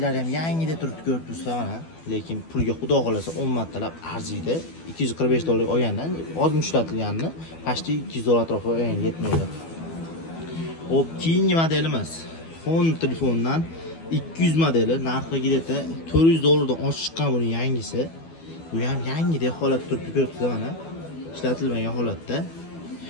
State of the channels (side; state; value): right; late; 12 ms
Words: ham yangidek turibdi, ko'rib turibsizlar mana. Lekin pulga xudo xolasa 10 martalab arziydi. $245 olgandan ozmi ishlatilganini pashti $200 atrofida yetmaydi. Hop, keyingi modelimiz Honor telefondan 200 modeli narxigida $400 dan oshib chiqqan buning yangisi. Bu ham yangidek holatda turibdi, ko'rib turibsizlar mana. Ishlatilmagan holatda.